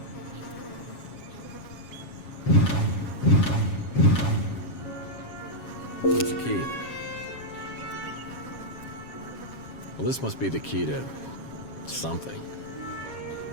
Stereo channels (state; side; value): late; right; 7.3 ms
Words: What's the key? Well, this must be the key to something.